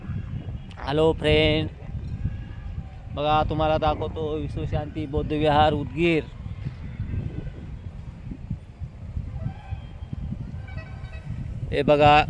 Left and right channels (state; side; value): identical; both; correlation 1.00